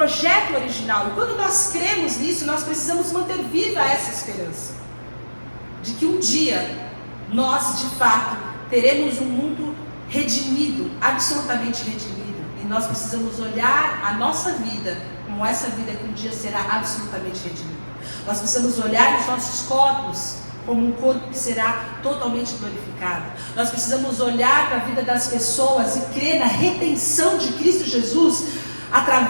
original. E quando nós cremos nisso, nós precisamos manter viva essa esperança de que um dia nós, de fato, teremos um mundo redimido, absolutamente redimido. E nós precisamos olhar a nossa vida como essa vida que um dia será absolutamente redimida. Nós precisamos olhar os nossos corpos como um corpo que será totalmente glorificado. Nós precisamos olhar para a vida das pessoas e crer na redenção de Cristo Jesus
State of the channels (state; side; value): inverted; both; correlation -1.00